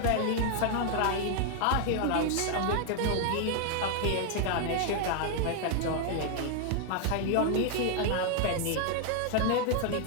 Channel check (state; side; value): different; both; correlation 0.00